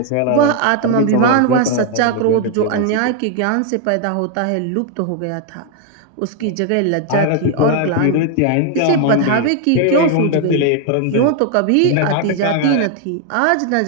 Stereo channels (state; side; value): different; both; correlation 0.00